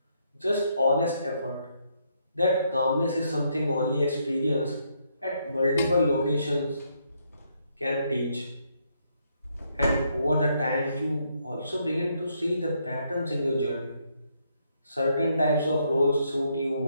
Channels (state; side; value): inverted; both; correlation -0.74